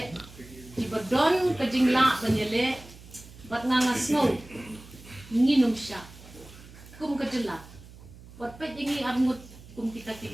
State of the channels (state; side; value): noise; right; hum, 19 dB below the sound